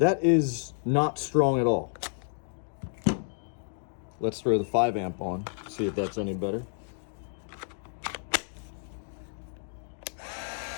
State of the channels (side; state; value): right; silent; 58 dB below the other